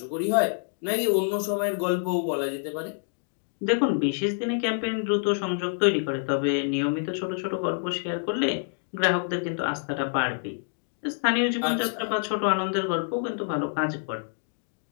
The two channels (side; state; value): right; silent; digital silence